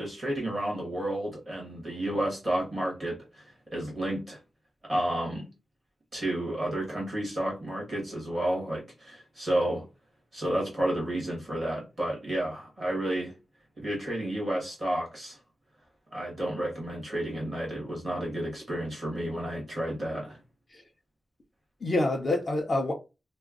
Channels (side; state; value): both; normal; correlation 0.90